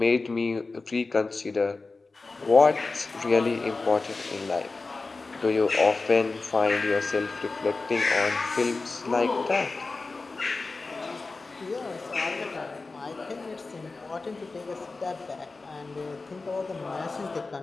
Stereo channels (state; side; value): quieter; right; 3.7 dB